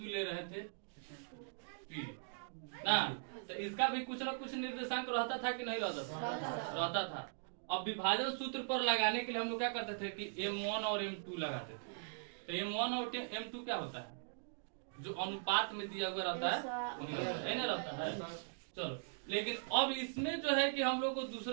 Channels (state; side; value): silent; left; digital silence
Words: ले रहे थे पी ना, तो इसका भी कुछ ना कुछ निर्देशांक रहता था कि नहीं रहता था? रहता था। अब विभाजन सूत्र पर लगाने के लिए हम लोग क्या करते थे कि M1 और M2 लगाते थे। तो M1 और M2 क्या होता है, जो अनुपात में दिया हुआ रहता है ना रहता है। चलो, लेकिन अब इसमें जो है कि हम लोग को